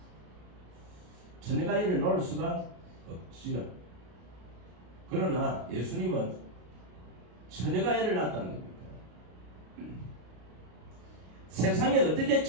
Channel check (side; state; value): left; late; 33 ms